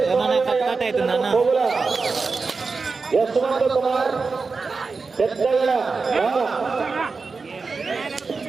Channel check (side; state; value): left; quieter; 4.4 dB